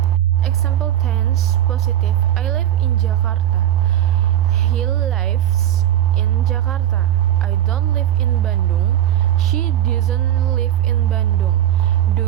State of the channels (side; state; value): left; quieter; 12.0 dB